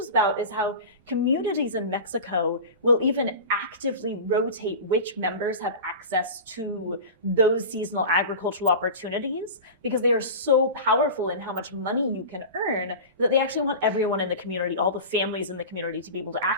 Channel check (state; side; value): inverted; both; correlation -0.31